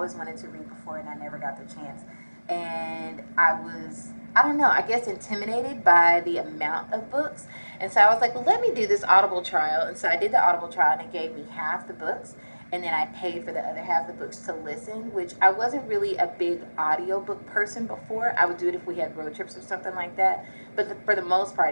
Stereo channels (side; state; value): both; inverted; correlation -1.00